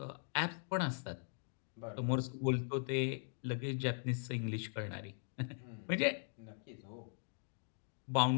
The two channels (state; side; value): silent; right; digital silence